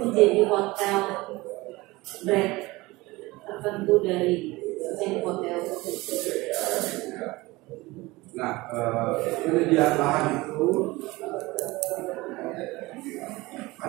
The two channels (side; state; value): left; quieter; 21.1 dB